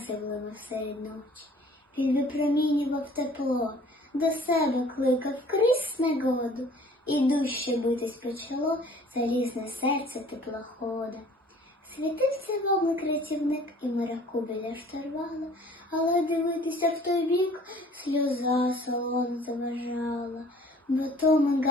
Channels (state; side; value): normal; both; correlation 0.52